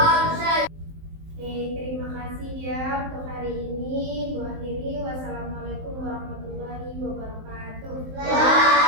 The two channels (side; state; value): left; late; 19 ms